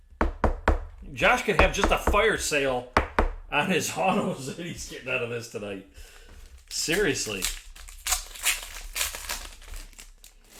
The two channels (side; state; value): both; identical; correlation 1.00